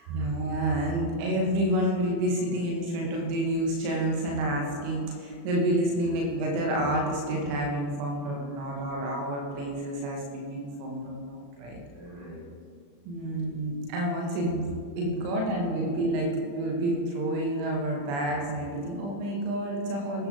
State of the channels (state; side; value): late; left; 35 ms